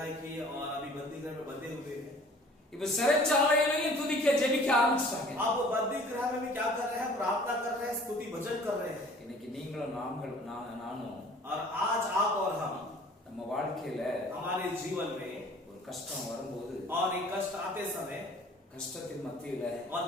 की और अभी बंदी गृह में बंधे हुए हैं. இப்ப சிறைச்சாலையிலையும் துதிக்க ஜெபிக்க ஆரம்பிச்சாங்க. आप वो बंदी गृह में भी क्या कर रहे हैं? प्रार्थना कर रहे हैं, स्तुति भजन कर रहे हैं. இன்னைக்கு நீங்களும் நானும் और आज आप और हम நம்ம வாழ்க்கையில हमारे जीवन में ஒரு கஷ்டம் வரும்போது और एक कष्ट आते समय கஷ்டத்தின் மத்தியில और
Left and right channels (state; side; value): normal; both; correlation 0.50